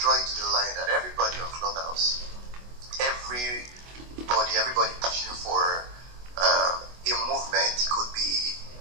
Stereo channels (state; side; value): late; left; 24 ms